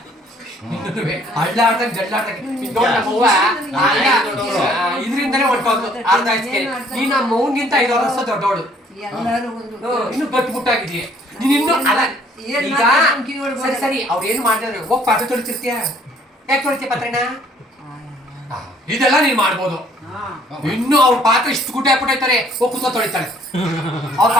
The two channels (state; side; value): normal; both; correlation 0.61